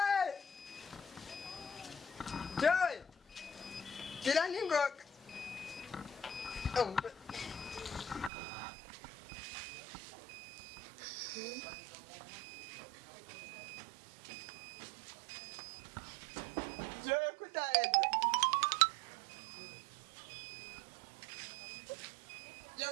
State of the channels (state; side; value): drops out; left; at 8.3 s